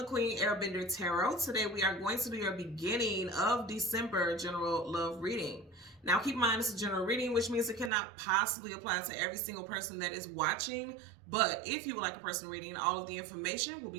Queen Airbender Tarot. Today we are going to do your beginning of December general love reading. Now keep in mind this is a general reading, which means it cannot possibly apply to every single person that is watching. But if you would like a personal reading, all of the information will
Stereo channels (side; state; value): left; drops out; at 7.9 s